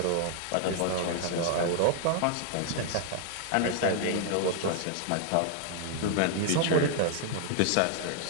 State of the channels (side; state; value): both; different; correlation 0.00